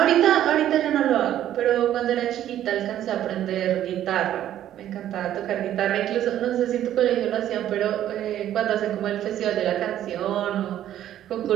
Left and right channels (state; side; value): quieter; left; 11.7 dB